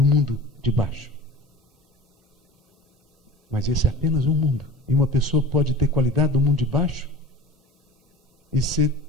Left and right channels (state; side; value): normal; both; correlation 0.37